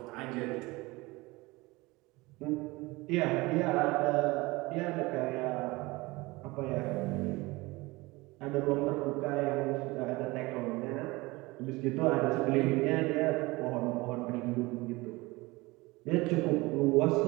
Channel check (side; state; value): left; quieter; 22.3 dB